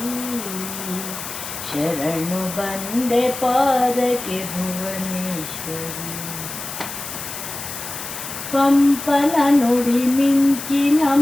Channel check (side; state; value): left; noise; hiss, 9 dB below the sound